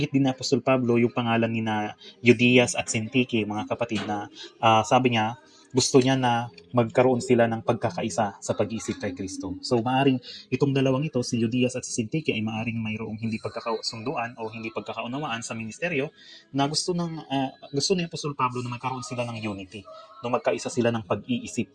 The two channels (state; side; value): identical; both; correlation 1.00